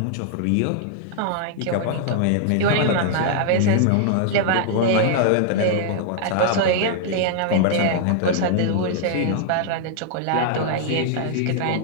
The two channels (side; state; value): both; different; correlation -0.01